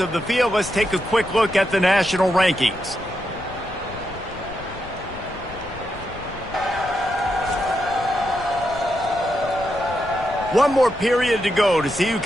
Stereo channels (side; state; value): left; noise; rumble, 15 dB below the sound